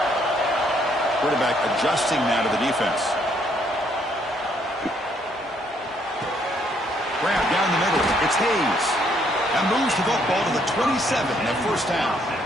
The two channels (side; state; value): both; normal; correlation 0.69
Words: Quarterback adjusting now to the defense. Grab down the middle. It's Hayes. And moves the football to the 27 and a first down.